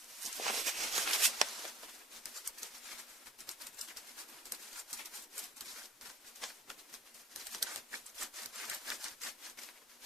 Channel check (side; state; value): both; normal; correlation 0.50